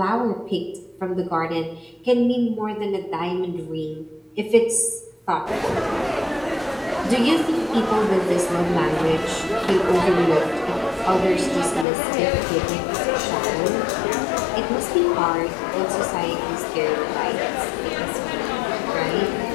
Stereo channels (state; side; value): drops out; right; at 11.9 s